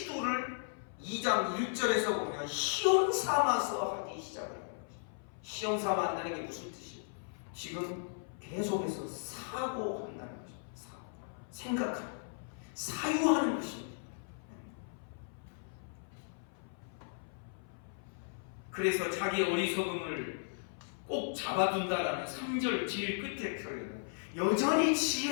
2장 1절에서 보면 시험 삼아서 하기 시작을 해요. 시험 삼아 한다는 게 무슨 뜻이에요? 지금 계속해서 사고한다는 거죠. 생각하는, 사유하는 것입니다. 그래서 자기 어리석음을 꼭 잡아둔다라는 3절 제일 끝에 표현은 여전히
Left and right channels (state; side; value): silent; right; 54 dB below the other